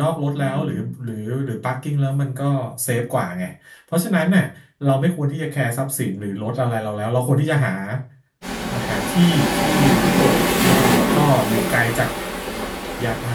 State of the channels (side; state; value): both; identical; correlation 1.00